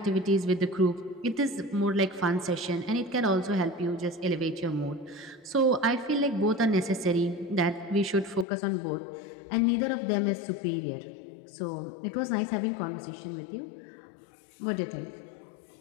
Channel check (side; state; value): right; drops out; at 8.5 s